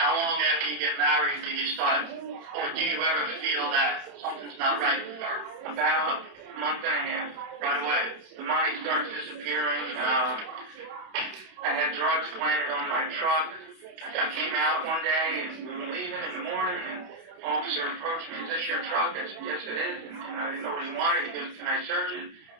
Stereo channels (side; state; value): left; late; 31 ms